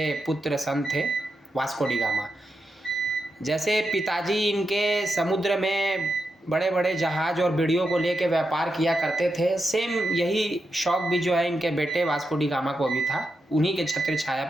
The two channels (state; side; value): normal; both; correlation 0.87